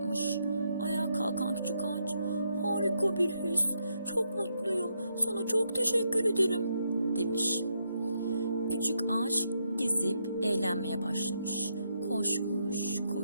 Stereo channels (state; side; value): inverted; both; correlation -0.79